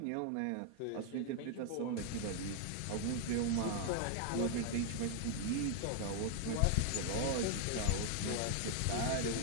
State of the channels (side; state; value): both; different; correlation 0.00